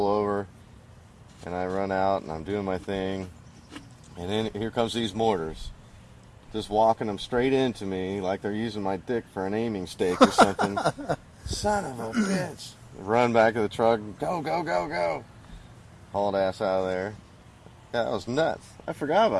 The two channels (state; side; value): identical; both; correlation 1.00